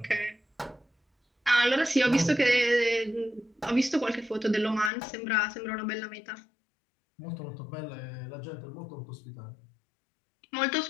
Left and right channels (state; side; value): drops out; right; at 4.9 s